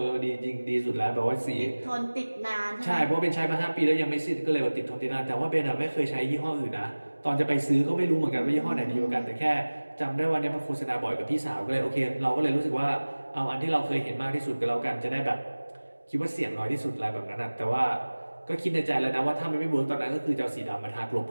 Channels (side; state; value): both; inverted; correlation -1.00